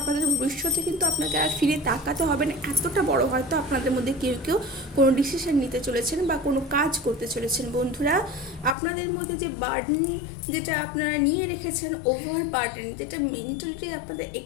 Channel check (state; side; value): drops out; right; at 8.8 s